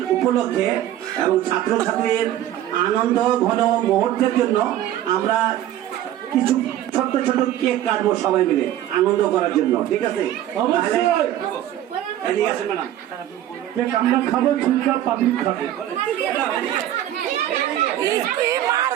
উপলক্ষে এবং ছাত্রছাত্রীর আনন্দ ঘন মুহূর্তের জন্য আমরা কিছু ছোট্ট ছোট কেক কাটবো সবাই মিলে আনন্দ করার জন্য, ঠিক আছে? এদিকে আসেন ম্যাডাম। কেক আমরা খাবো, চুপচাপ পাবলিক খাবে।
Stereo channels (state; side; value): quieter; left; 12.6 dB